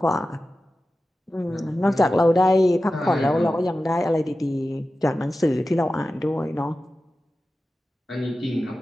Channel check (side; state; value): both; normal; correlation 0.94